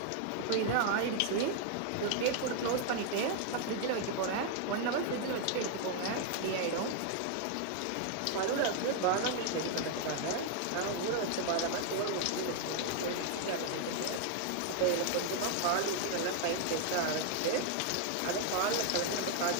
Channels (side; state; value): both; different; correlation 0.00